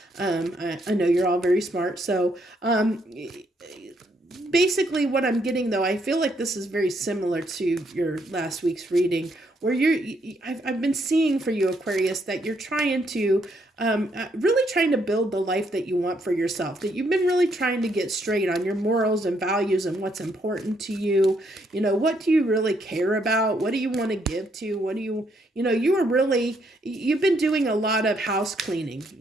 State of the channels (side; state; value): both; normal; correlation 0.73